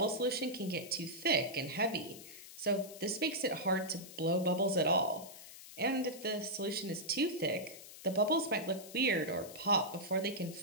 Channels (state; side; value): noise; left; hiss, 15 dB below the sound